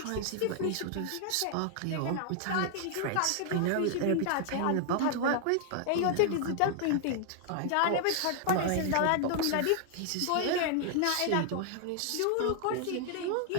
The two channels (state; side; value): different; both; correlation 0.00